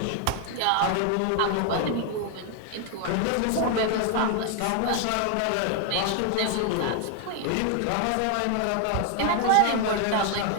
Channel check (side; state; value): both; different; correlation 0.01